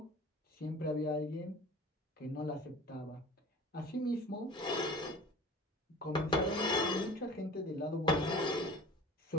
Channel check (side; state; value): both; normal; correlation 0.42